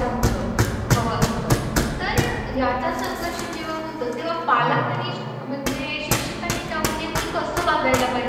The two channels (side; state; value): both; identical; correlation 1.00